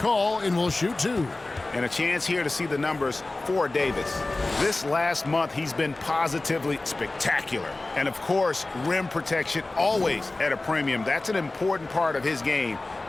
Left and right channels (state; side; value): quieter; right; 3.0 dB